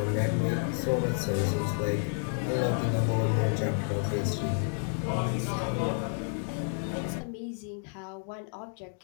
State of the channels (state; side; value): silent; right; 58 dB below the other